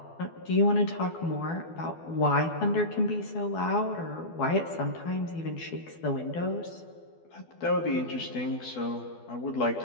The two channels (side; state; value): right; late; 12 ms